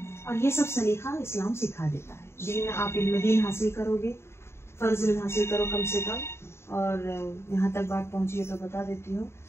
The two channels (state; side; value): late; right; 0.12 ms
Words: और ये सब सलीका इस्लाम सिखा देता है। दीन आप इल्म दीन हासिल करोगे, फ़र्ज़ इल्म हासिल करो कम से कम। और यहाँ तक बात पहुँची है तो बता देती हूँ,